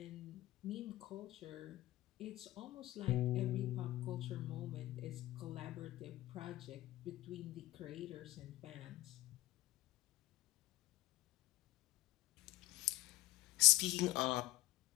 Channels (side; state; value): right; quieter; 17.6 dB